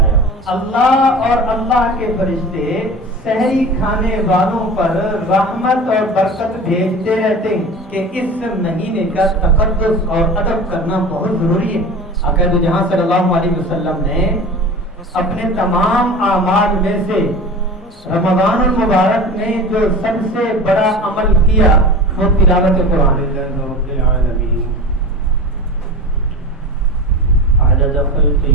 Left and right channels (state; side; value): normal; both; correlation 0.34